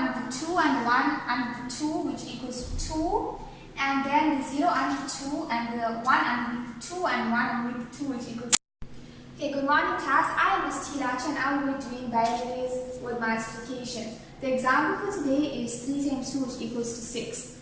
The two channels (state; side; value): identical; both; correlation 1.00